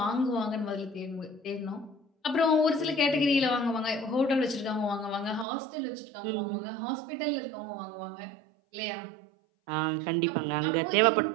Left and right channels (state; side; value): drops out; left; at 5.5 s